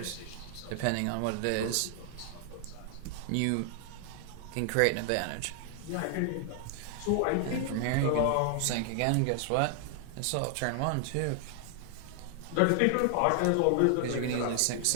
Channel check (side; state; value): both; different; correlation 0.00